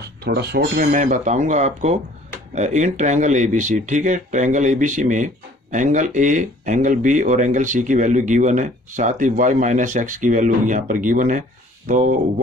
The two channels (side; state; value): both; normal; correlation 0.54